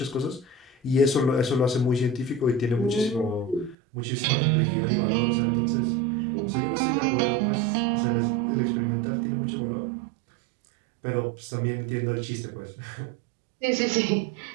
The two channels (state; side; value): drops out; left; at 3.8 s